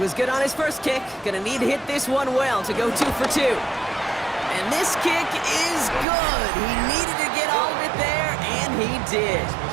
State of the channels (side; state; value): left; drops out; at 6.1 s